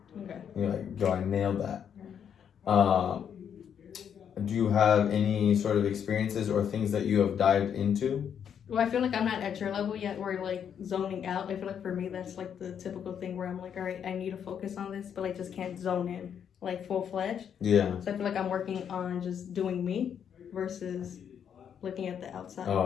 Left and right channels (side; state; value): right; quieter; 8.3 dB